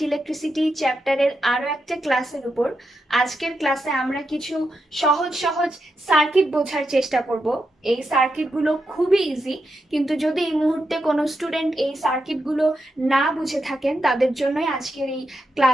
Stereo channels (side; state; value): both; normal; correlation 0.86